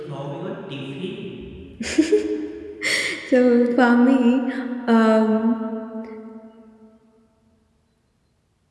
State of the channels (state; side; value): identical; both; correlation 1.00